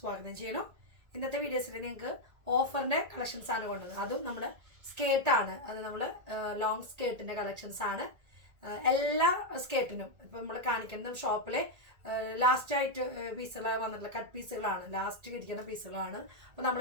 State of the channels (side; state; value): left; late; 1.9 ms